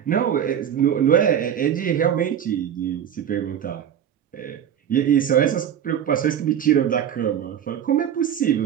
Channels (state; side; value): quieter; left; 9.3 dB